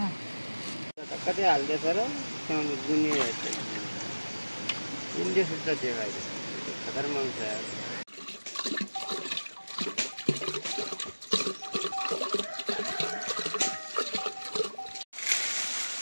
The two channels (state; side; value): inverted; both; correlation -1.00